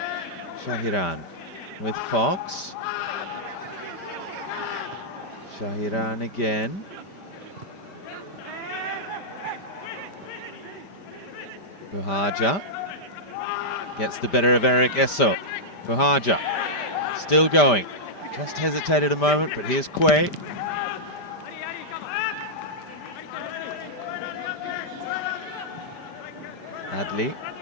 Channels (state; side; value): late; right; 5.1 ms